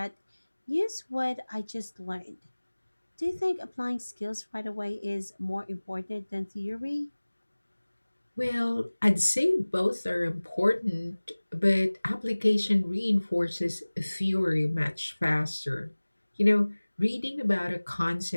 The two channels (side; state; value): both; inverted; correlation -1.00